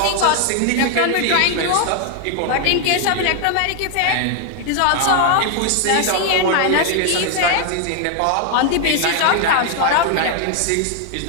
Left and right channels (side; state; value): both; different; correlation 0.00